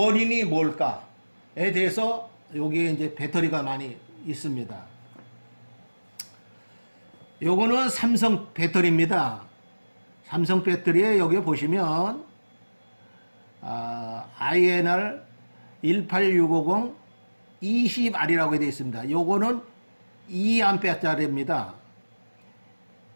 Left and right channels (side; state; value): both; inverted; correlation -1.00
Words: 뭘까에 대해서 여기에 이제 배터리가 많이 있습니다. 요거는 삼성 배터리입니다. 삼성 배터리에 여기 보시면 INR 18650 20R이라고 되어 있습니다. 요거는 2A짜리입니다.